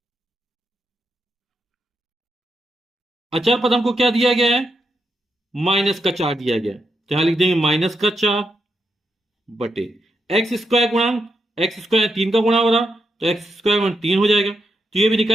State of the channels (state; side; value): normal; both; correlation 0.83